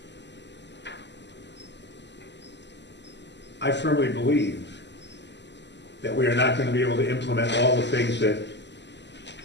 I firmly believe that we are not going to be able to implement all the things that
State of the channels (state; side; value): late; right; 0.51 ms